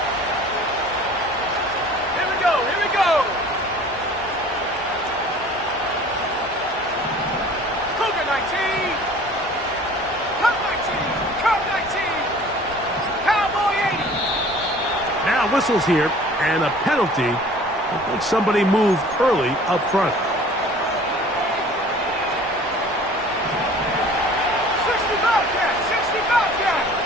Whistles here, and a penalty. I think somebody moved early up front. 65.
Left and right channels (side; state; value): both; normal; correlation 0.48